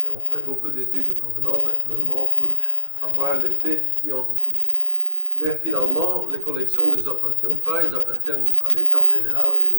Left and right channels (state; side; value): inverted; both; correlation -0.52